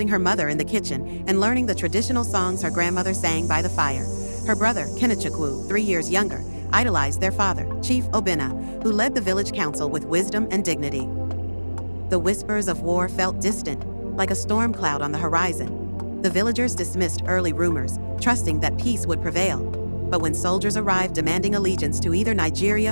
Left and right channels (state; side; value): inverted; both; correlation -1.00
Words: her mother in the kitchen and learning the traditional songs her grandmother sang by the fire. Her brother, Kenechukwu, 3 years younger, idolized their father, Chief Obinna, who led the village council with wisdom and dignity. The whispers of war felt distant, like a storm cloud on the horizon. The villagers dismissed early rumors, trusting that peace would prevail. But when soldiers arrived demanding allegiance to either